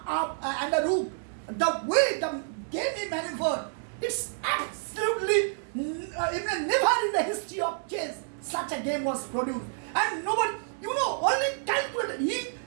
a rook, the way the game he maneuvered, it's absolutely even never in the history of chess such a game was produced. And nobody, only calculated.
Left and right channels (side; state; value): left; silent; digital silence